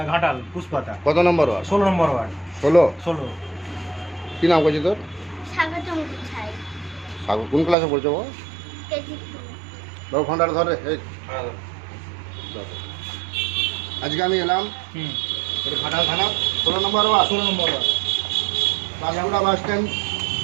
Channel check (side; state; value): left; drops out; at 7.8 s